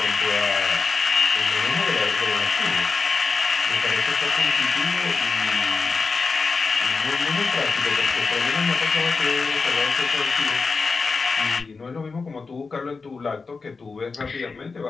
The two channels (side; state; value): right; quieter; 4.5 dB